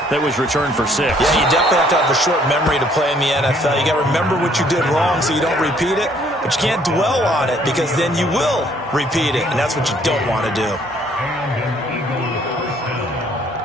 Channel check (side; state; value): both; normal; correlation 0.63